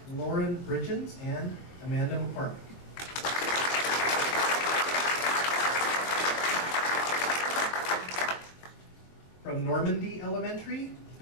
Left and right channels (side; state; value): right; late; 22 ms